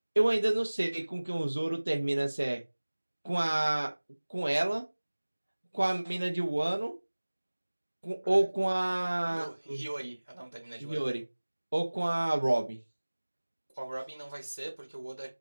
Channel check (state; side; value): inverted; both; correlation -1.00